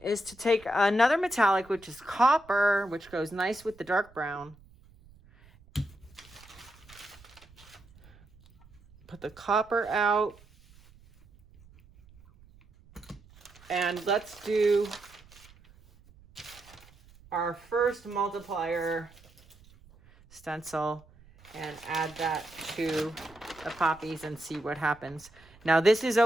is to take another metallic, which is copper, which goes nice with the dark brown. Put the copper out. And let's do our first multiplier stencil and add that to the poppies and see what happens. Now this is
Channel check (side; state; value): right; noise; rumble, 25 dB below the sound